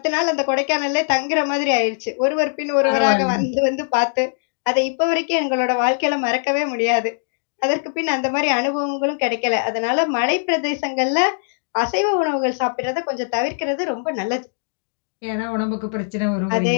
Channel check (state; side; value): silent; right; digital silence